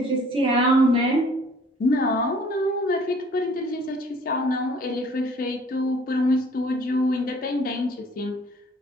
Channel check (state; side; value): normal; both; correlation 0.55